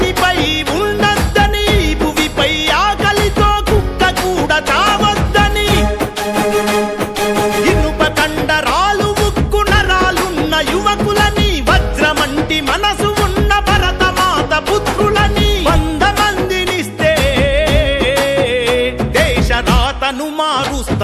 ఉండద్దని భువిపై ఆకలితో కుక్క కూడా చావద్దని ఇనుప కండరాలు ఉక్కు నరాలున్న యువకులని వజ్రమంటి మనసు ఉన్న భరతమాత పుత్రులని 100 మందినిస్తే దేశ రాతను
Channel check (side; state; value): both; identical; correlation 1.00